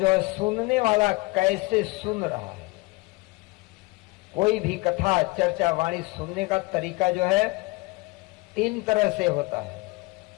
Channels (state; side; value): quieter; right; 24.3 dB